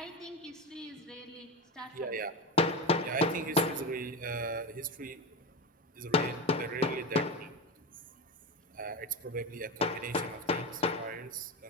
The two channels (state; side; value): normal; both; correlation 0.22